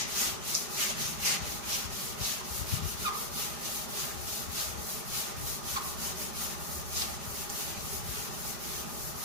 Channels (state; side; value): late; left; 5.0 ms